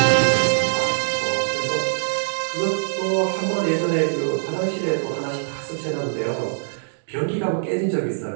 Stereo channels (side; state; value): left; silent; digital silence